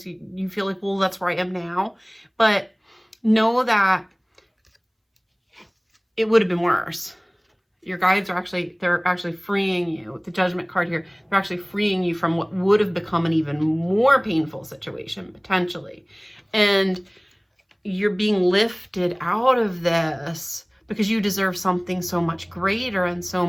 you feel like, well, that's where I am now. But know that it would have been worse. Your guides are they're actually freeing you. With the Judgment card here, they're actually freeing you from what would have become an even more painful situation, potentially. And you're being lifted out of this because you deserve something so much greater and so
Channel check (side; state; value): both; identical; correlation 1.00